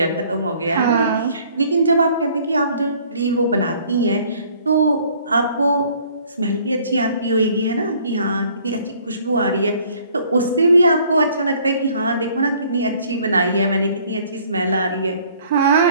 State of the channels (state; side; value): inverted; both; correlation -0.58